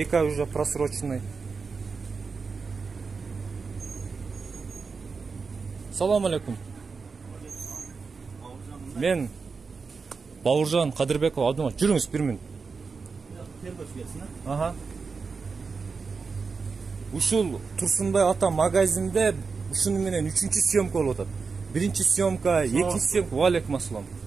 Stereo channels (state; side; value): quieter; left; 4.9 dB